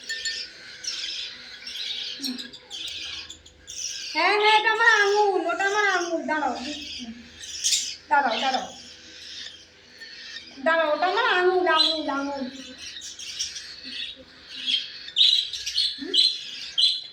হ্যাঁ হ্যাঁ, এটা আমার আঙুল, ওটা আমার আঙুল। দাঁড়াও দাঁড়াও দাঁড়াও দাঁড়াও, ওটা আমার আঙুল আঙুল আঙুল।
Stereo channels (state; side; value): identical; both; correlation 1.00